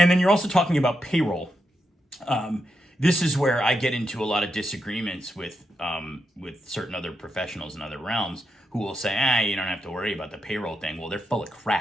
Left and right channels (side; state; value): both; normal; correlation 0.84